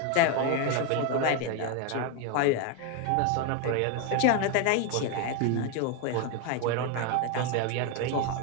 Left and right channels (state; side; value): different; both; correlation 0.01